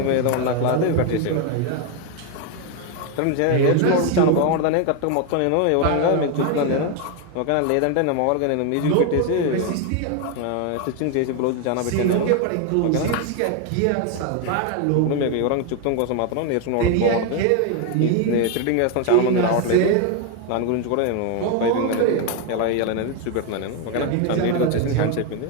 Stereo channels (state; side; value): different; both; correlation 0.01